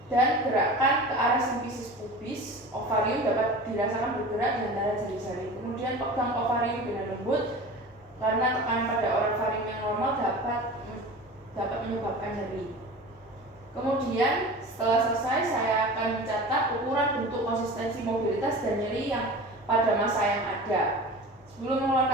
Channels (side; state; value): both; normal; correlation 0.35